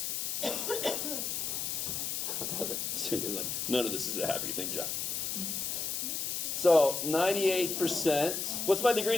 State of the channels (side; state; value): left; noise; hiss, 2 dB below the sound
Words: Okay. So he goes like, none of this is a happy thing, Jeff. So 98%. What's my